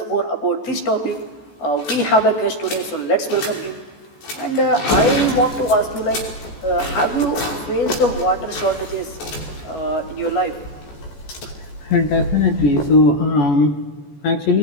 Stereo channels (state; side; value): late; right; 14 ms